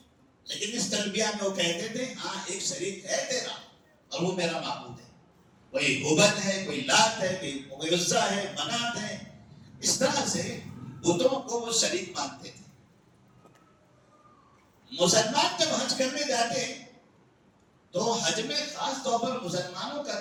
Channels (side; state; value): both; identical; correlation 1.00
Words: لیکن اس تلبیہ میں وہ کہتے تھے ہاں ایک شریک ہے تیرا اور وہ میرا معبود ہے. کوئی ہبل ہے، کوئی لات ہے، کوئی عزا ہے، منات ہے. اس طرح سے بتوں کو وہ شریک مانتے تھے. مسلمان جب حج کرنے جاتے تو حج میں خاص طور پر مسلمانوں کا